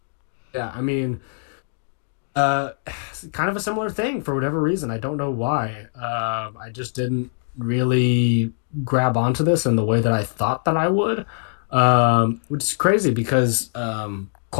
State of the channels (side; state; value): right; silent; digital silence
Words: mean, kind of a similar thing for whatever reason. I don't know why. I just didn't really grab onto this in the way that I thought that I would, which is crazy because